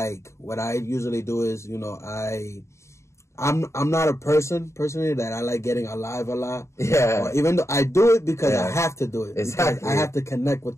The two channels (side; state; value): right; late; 0.14 ms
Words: what I usually do is, you know, I'm not a personally that I like getting alive a lot. Yeah. Or even though I do it because I have to do it. Exactly. Because I have to connect with